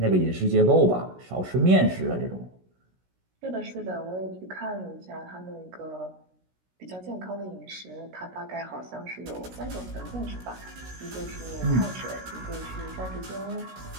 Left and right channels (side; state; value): left; late; 16 ms